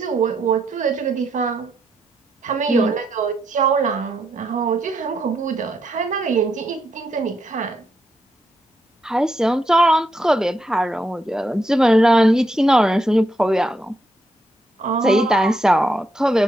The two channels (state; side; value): normal; both; correlation 0.79